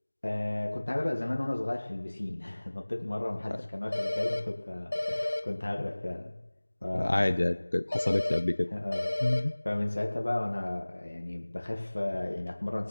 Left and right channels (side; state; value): both; inverted; correlation -1.00